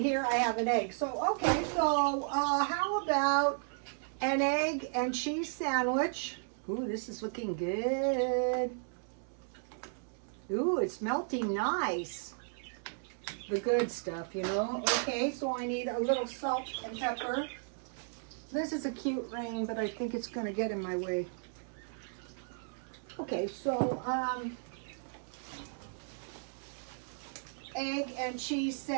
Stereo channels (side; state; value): left; silent; digital silence